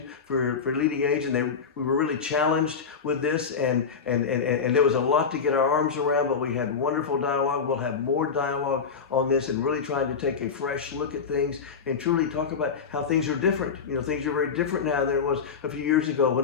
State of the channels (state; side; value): quieter; right; 6.0 dB